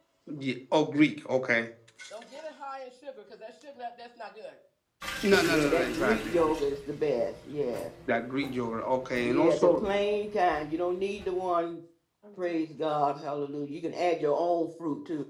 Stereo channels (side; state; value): both; identical; correlation 1.00